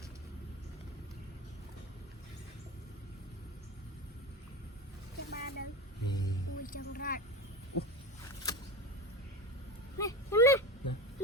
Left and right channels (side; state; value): both; normal; correlation 0.26